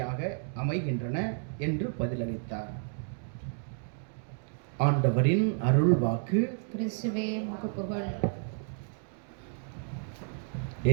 அமைகின்றன என்று பதிலளித்தார். ஆண்டவரின் அருள் வாக்கு. கிறிஸ்துவே உமக்கு புகழ்.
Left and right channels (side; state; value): left; silent; 56 dB below the other